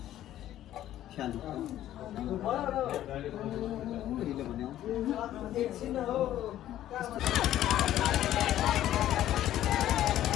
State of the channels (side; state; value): right; quieter; 12.7 dB